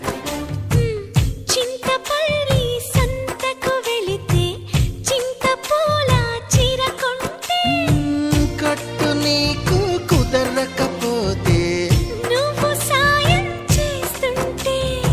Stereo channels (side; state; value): both; identical; correlation 1.00